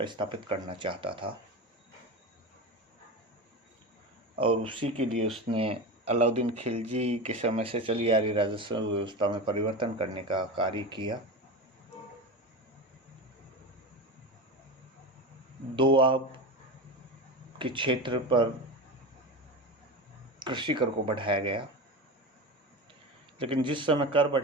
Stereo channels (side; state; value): both; normal; correlation 0.24